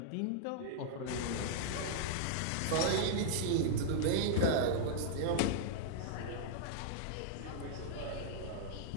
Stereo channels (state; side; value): different; both; correlation -0.01